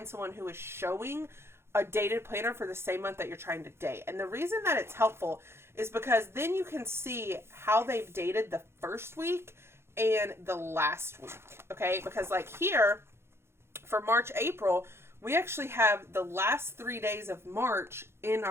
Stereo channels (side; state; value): left; late; 0.12 ms